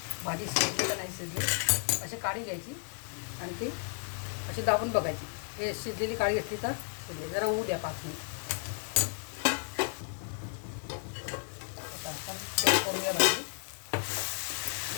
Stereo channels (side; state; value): right; silent; 56 dB below the other